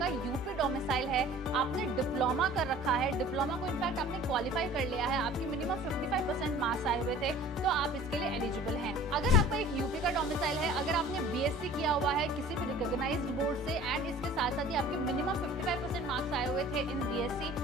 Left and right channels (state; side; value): normal; both; correlation 0.47